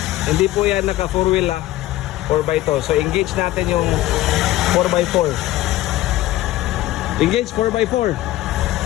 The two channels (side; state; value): right; quieter; 15.7 dB